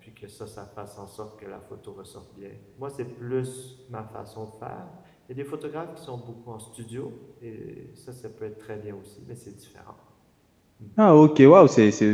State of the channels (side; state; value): both; identical; correlation 1.00